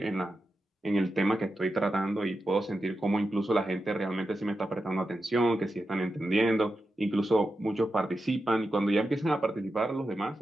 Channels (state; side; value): normal; both; correlation 0.90